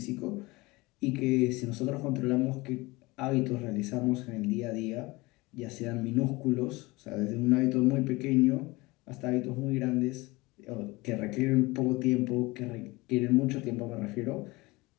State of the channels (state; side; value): quieter; right; 22.6 dB